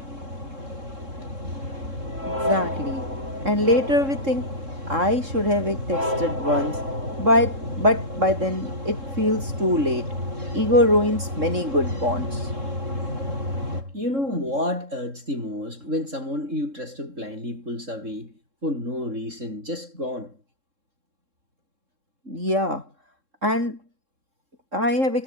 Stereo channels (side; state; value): left; late; 3.7 ms